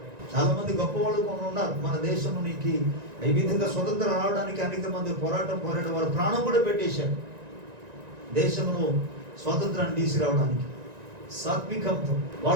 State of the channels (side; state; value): left; late; 1.9 ms